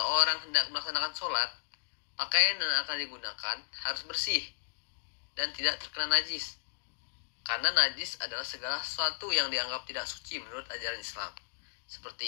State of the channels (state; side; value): silent; right; digital silence